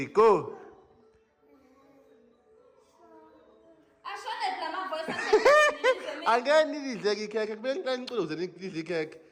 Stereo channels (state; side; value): identical; both; correlation 1.00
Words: go. Again, need the cake. Then close the cake.